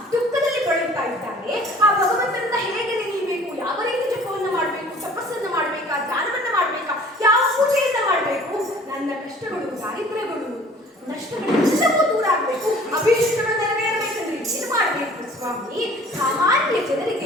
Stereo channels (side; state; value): both; normal; correlation 0.50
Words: ದುಃಖದಲ್ಲಿ ಬಳಲ್ತಾ ಇದ್ದಾರೆ. ಆ ಭಗವಂತನನ್ನ ಹೇಗೆ ನೆನೆಯಬೇಕು, ಯಾವ ರೀತಿ ಜಪವನ್ನ ಮಾಡಬೇಕು, ತಪಸ್ಸನ್ನ ಮಾಡ್ಬೇಕಾ, ಧ್ಯಾನವನ್ನ ಮಾಡ್ಬೇಕಾ, ಯಾವ ಪೂಜೆಯನ್ನ ಮಾಡಬೇಕು, ನನ್ನ ಕಷ್ಟಗಳು, ದಾರಿದ್ರ್ಯಗಳು, ನಷ್ಟಗಳೆಲ್ಲವೂ ದೂರ ಆಗ್ಬೇಕು, ಅಭೀಷ್ಟಗಳು ನೆರವೇರಬೇಕಂದ್ರೆ ಏನ್ ಮಾಡ್ಬೇಕು ಸ್ವಾಮಿ, ಸಾಮಾನ್ಯ